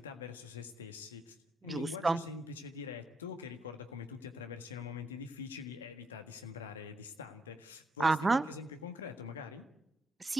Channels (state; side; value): normal; both; correlation 0.77